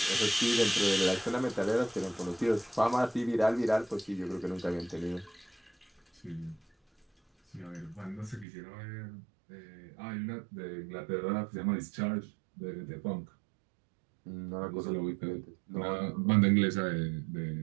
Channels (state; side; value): drops out; left; at 8.5 s